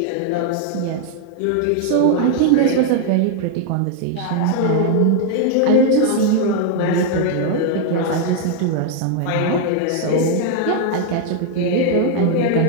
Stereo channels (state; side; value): different; both; correlation 0.00